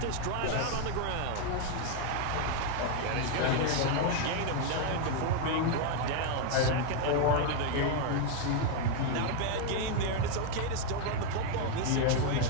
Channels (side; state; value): both; different; correlation 0.01